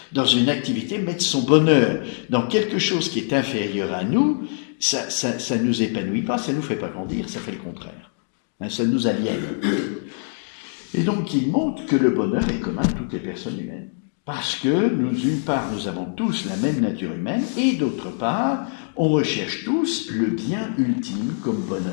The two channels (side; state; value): right; silent; digital silence